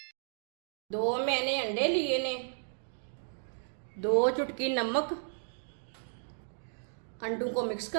दो मैंने अंडे लिए ने, दो चुटकी नमक। अंडों को मिक्स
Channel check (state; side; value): silent; left; digital silence